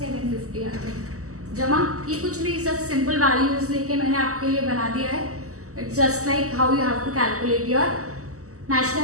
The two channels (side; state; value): left; late; 0.65 ms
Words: आ गया, जमा। ये कुछ नहीं, सब सिंपल वैल्यूज लेके मैंने आपके लिए बना दिया है, it's just like how you have to calculate your